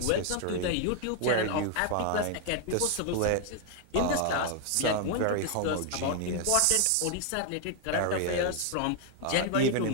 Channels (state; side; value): different; both; correlation 0.00